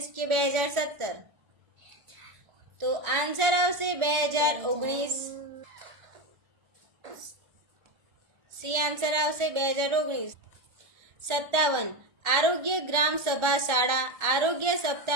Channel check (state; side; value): late; left; 1.4 ms